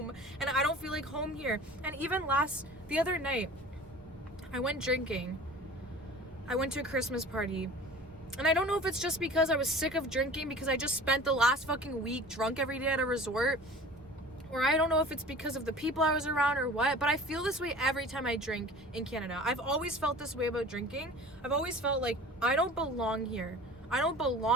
and I don't feel like home here. And even the other night, I went drinking. I went to a Christmas party, and I don't know if it's just because I was sick of drinking because I just spent the last fucking week drunk every day at a resort, or I don't know if it's because of the people I was around or what, but I feel this way every time I drink in Canada. I've always felt this way about drinking. I've always felt like I don't belong here. I don't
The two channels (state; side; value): normal; both; correlation 0.41